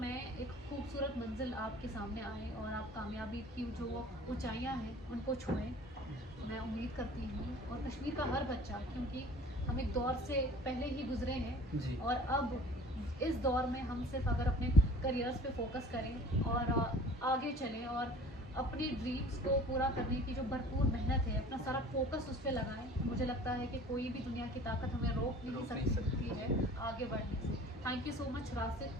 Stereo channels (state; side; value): normal; both; correlation 0.46